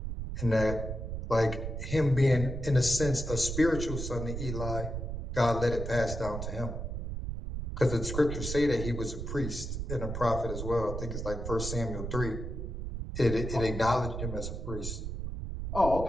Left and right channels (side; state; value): right; noise; rumble, 5 dB below the sound